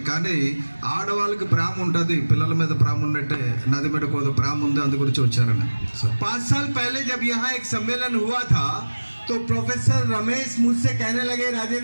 కానీ ఆడవాళ్ళకి ప్రేమ ఉంటుంది, పిల్లల మీద ప్రేమ ఉన్నట్టే నది మీద కొద్ది ప్రేమ ఉంది, అందు గురించి వచ్చారని। 5 साल पहले जब यहाँ एक सम्मेलन हुआ था तो प्रोफेसर रमेश मुझसे कहने लगे,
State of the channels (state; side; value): inverted; both; correlation -1.00